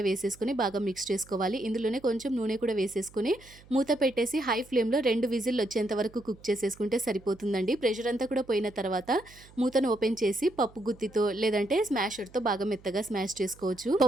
వేసేసుకొని బాగా మిక్స్ చేసుకోవాలి. ఇందులోనే కొంచెం నూనె కూడా వేసేసుకొని మూత పెట్టేసి హై ఫ్లేమ్‌లో 2 విజిల్లు వచ్చేంత వరకు కుక్ చేసేసుకుంటే సరిపోతుందండి. ప్రెషర్ అంతా కూడా పోయిన తర్వాత మూతను ఓపెన్ చేసి పప్పు గుత్తితో లేదంటే స్మాషర్‌తో బాగా మెత్తగా స్మాష్ చేసుకోవచ్చు.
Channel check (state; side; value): noise; right; hum, 24 dB below the sound